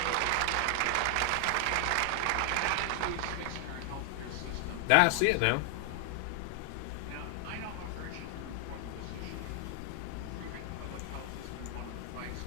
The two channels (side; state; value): both; different; correlation 0.00